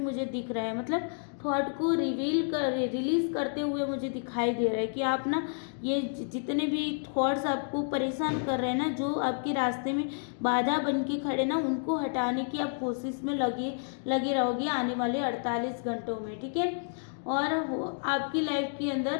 दिख रहा है, मतलब थॉट को रिलीज करते हुए मुझे दिखाई दे रहा है कि आप ना ये जितने भी थॉट्स आपको परेशान कर रहे हैं ना, जो आपके रास्ते में बाधा बन के खड़े ना, उनको हटाने की आप कोशिश में लगे रहोगे आने वाले 48 घंटों में, ठीक है। और आपकी लाइफ के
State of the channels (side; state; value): right; silent; digital silence